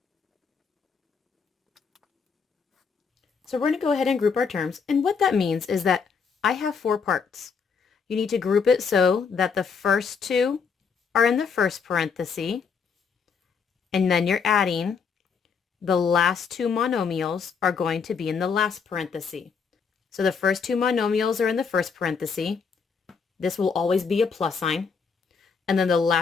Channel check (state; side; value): quieter; right; 5.8 dB